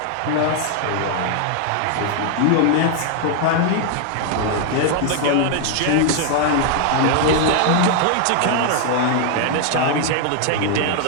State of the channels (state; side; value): different; both; correlation 0.00